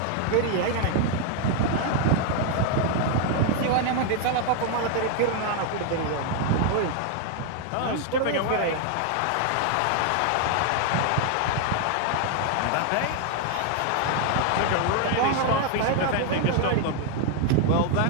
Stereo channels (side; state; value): both; different; correlation 0.00